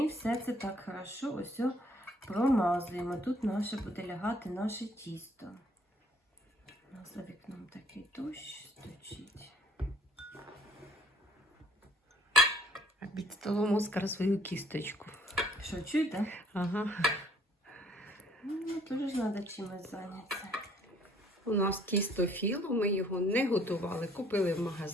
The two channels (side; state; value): both; normal; correlation 0.61